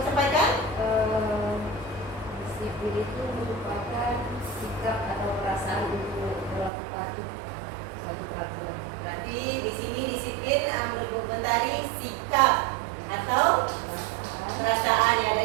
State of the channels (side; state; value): left; drops out; at 6.7 s